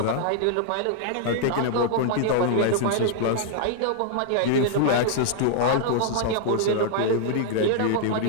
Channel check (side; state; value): both; different; correlation -0.01